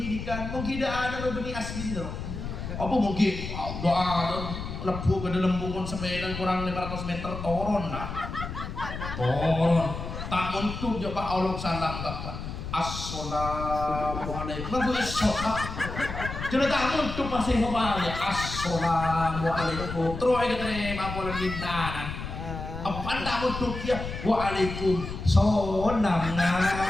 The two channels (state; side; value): noise; left; rumble, 7 dB below the sound